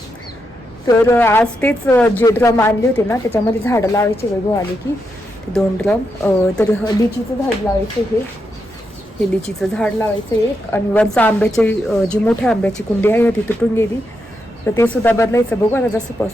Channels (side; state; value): both; normal; correlation 0.84